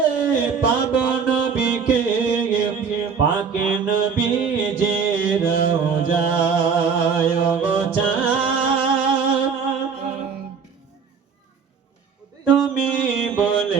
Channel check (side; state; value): left; quieter; 6.1 dB